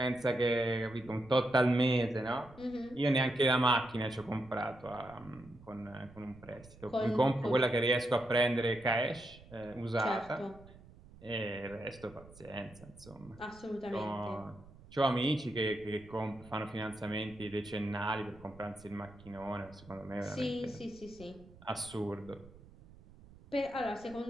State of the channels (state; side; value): noise; right; rumble, 21 dB below the sound